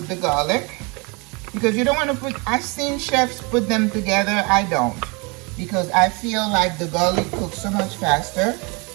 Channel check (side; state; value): left; quieter; 29.5 dB